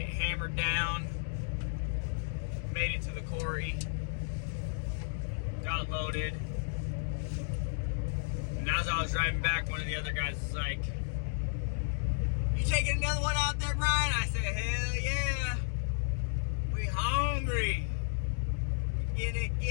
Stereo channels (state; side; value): silent; right; digital silence